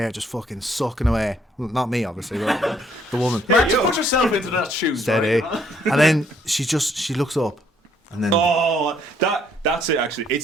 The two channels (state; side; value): normal; both; correlation 0.67